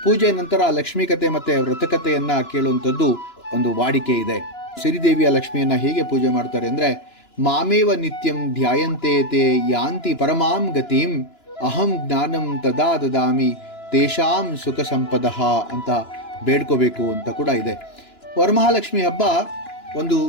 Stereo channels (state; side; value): late; right; 2.9 ms